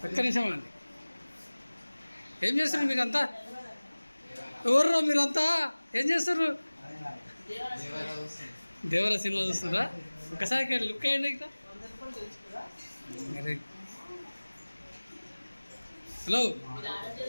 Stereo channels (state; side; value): inverted; both; correlation -1.00